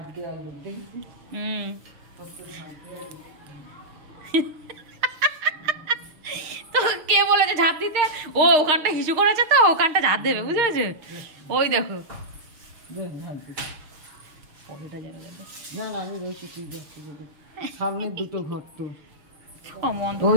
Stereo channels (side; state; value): left; late; 6.5 ms